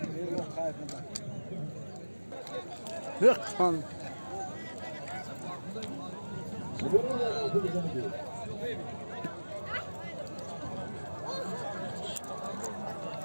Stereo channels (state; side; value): inverted; both; correlation -1.00